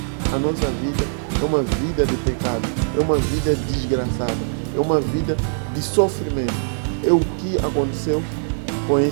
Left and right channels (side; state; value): left; silent; digital silence